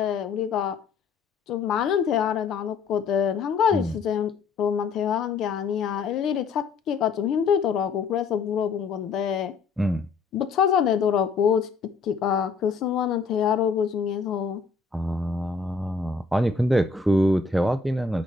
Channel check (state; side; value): quieter; right; 4.8 dB